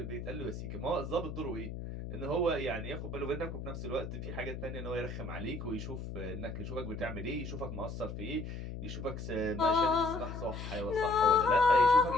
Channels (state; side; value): noise; left; hum, 7 dB below the sound